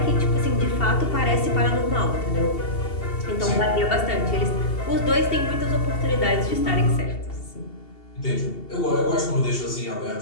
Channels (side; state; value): right; late; 2.7 ms